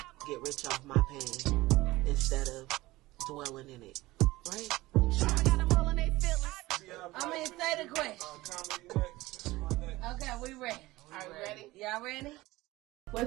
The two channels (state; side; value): quieter; left; 19.0 dB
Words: get rich off my pain instead of dwelling in it? Right? Trauma got them all in their feelings. Say the question. Okay, we ready. Are we ready? Y'all ready?